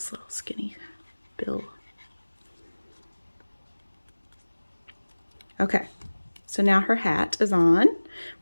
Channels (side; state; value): both; inverted; correlation -1.00